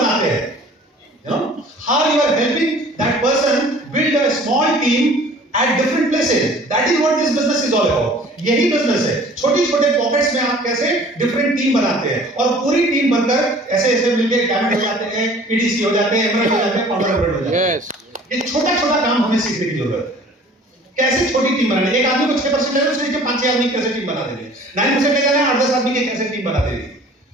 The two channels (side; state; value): both; normal; correlation 0.49